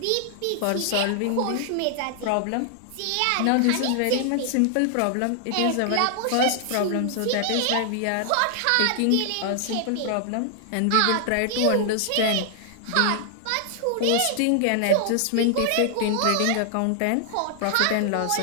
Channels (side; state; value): both; different; correlation 0.00